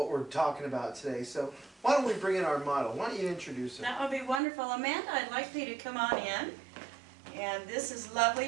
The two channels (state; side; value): drops out; left; at 4.4 s